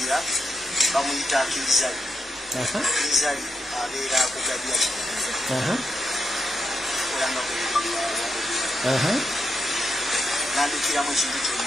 bamuyita Kirizali Kirizali abeera kugabya olanga nandikiramu ekintu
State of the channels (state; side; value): normal; both; correlation 0.81